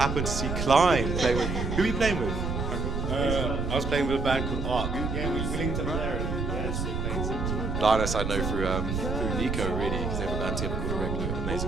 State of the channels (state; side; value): noise; right; rumble, 2 dB below the sound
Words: to see Klein playing with. Who were you playing with? I was playing with a band called Arc. Yeah, we linked up there. Linus I know through Nico, really, because they have a band together called Irregular,